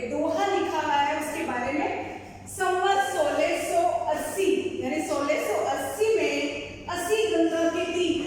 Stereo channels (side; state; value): both; identical; correlation 1.00